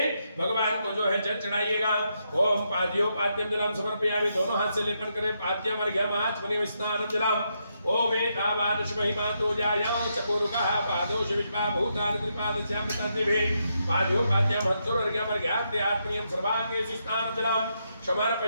भगवान को जो है जल चढ़ाइएगा। ओम पाद्यो पाद्यम जलम समर्पयामि। दोनों हाथ से लेपन करें। पाद्यम अर्घ्यम आचमनीयं स्नानं जलम। ओम एतावानुष महिमातो जायं चकोरुकः पादोष विश्वा भूतानि त्रिपादस्यामृतान्निभिः पाद्यो पाद्यम हंसोर्घ्यमर्घ्याद्य आत्मनीयं सर्वांगेषु स्नानं जलम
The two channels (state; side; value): inverted; both; correlation -0.81